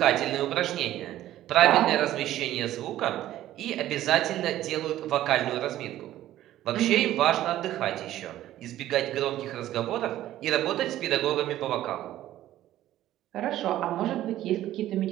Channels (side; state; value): left; quieter; 13.6 dB